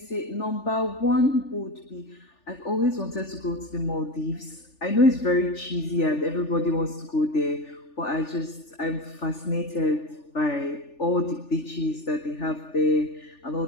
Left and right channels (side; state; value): right; late; 3.4 ms